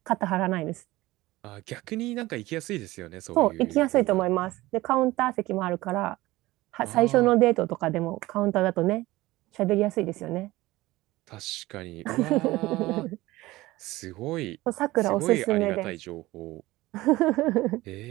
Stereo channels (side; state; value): left; quieter; 18.6 dB